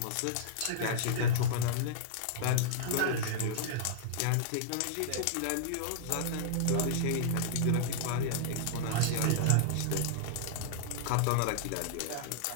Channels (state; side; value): different; both; correlation -0.01